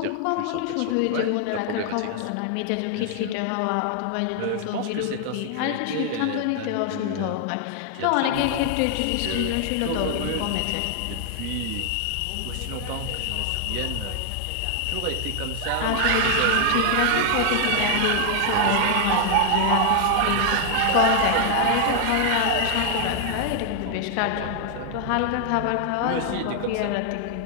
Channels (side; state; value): both; different; correlation 0.00